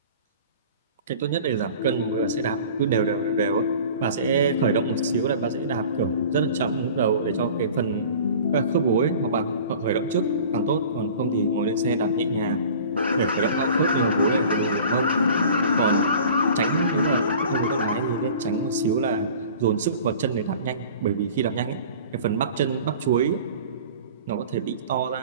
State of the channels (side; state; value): both; inverted; correlation -0.43